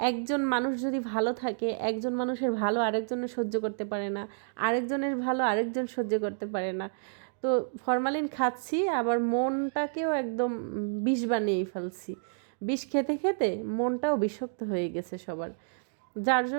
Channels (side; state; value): left; silent; digital silence